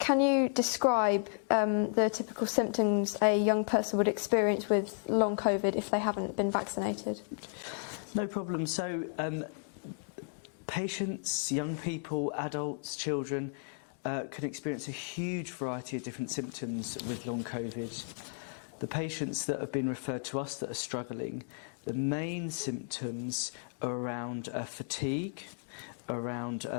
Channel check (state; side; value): silent; right; digital silence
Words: you describe the typical symptoms a young person would experience with long COVID if they haven't been vaccinated? No problem. So patients, young people, adults, children can experience a huge variety of different symptoms with long COVID. The patients that have been referred to us that are struggling, the main symptoms are around fatigue, around